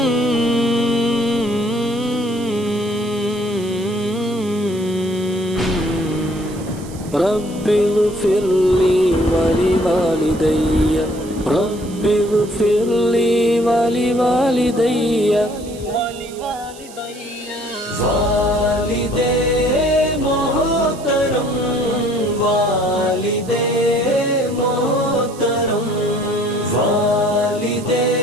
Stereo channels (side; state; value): right; noise; hiss, 19 dB below the sound